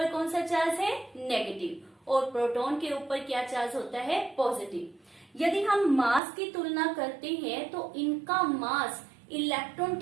कौन सा चार्ज है, नेगेटिव, और प्रोटॉन के ऊपर क्या चार्ज होता है, पॉजिटिव। यदि हम मास की तुलना करते हैं तो इनका मास इलेक्ट्रॉन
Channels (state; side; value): drops out; left; at 6.2 s